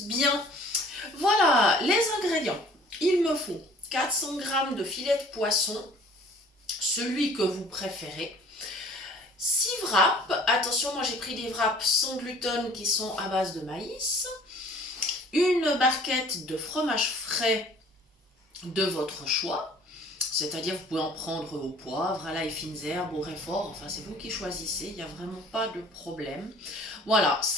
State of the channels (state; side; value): normal; both; correlation 0.52